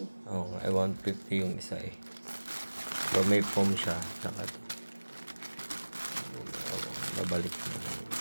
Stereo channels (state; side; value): inverted; both; correlation -1.00